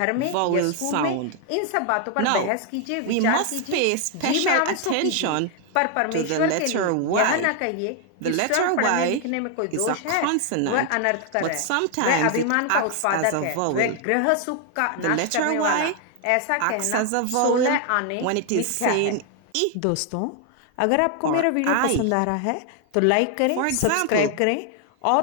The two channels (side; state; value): both; different; correlation 0.00